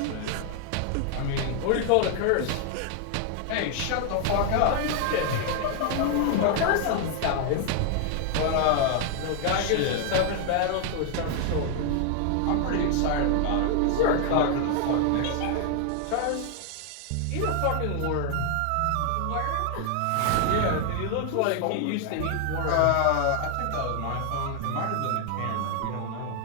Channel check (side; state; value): both; different; correlation 0.00